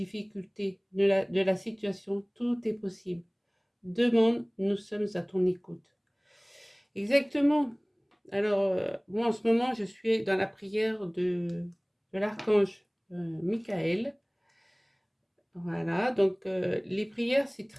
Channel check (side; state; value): both; identical; correlation 1.00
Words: de la situation, tout est possible. Demande, nous sommes à ton écoute. Exactement. Alors, moi en ce moment, je suis dans la prière de l'archange Michael. Voilà, donc les prières, c'est